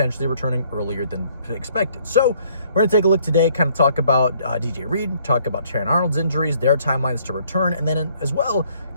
returning earlier than expected. So we're going to take a look today, kind of talk about DJ Reed, talk about Terrion Arnold's injuries, their timelines to return, and then as well,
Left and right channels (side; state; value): both; inverted; correlation -0.63